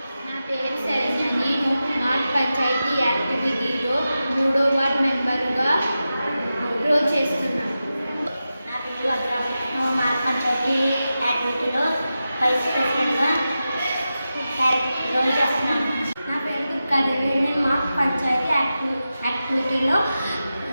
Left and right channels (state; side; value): inverted; both; correlation -0.92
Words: నా పేరు శరణ్య. నేను మా పంచాయతీ యాక్టివిటీలో 3వ వార్డ్ మెంబర్గా రోల్ చేస్తున్నాను. నా పేరు వజ్ర. నేను మా పంచాయతీ యాక్టివిటీలో వైస్ ప్రెసిడెంట్గా రోల్ చేస్తున్నాను. నా పేరు దుర్గాదేవి. నేను మా పంచాయతీ యాక్టివిటీలో